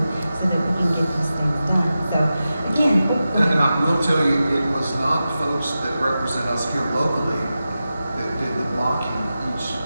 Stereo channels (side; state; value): both; inverted; correlation -0.92